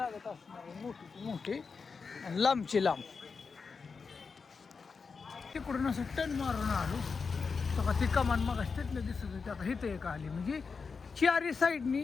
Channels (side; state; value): right; quieter; 5.1 dB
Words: असणार मोठी मोठी आणि लांबची लांब. तिकडून असं टन मारून आलो तेव्हा ती कमान मग तिथलं दिसत होती. आता इथं एक आली म्हणजे चारही साईडनी